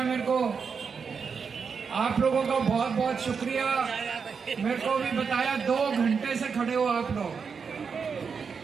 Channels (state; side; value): quieter; left; 5.9 dB